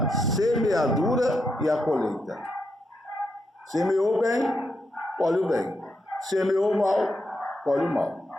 semeadura e a colheita. Semeou bem, colhe o bem. Semeou mal, colhe o mal.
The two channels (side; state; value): both; normal; correlation 0.82